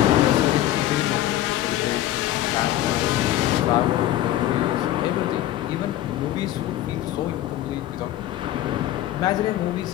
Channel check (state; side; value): quieter; right; 13.7 dB